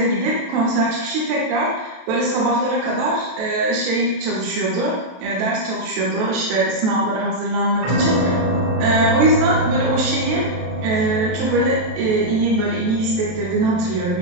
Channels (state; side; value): late; left; 23 ms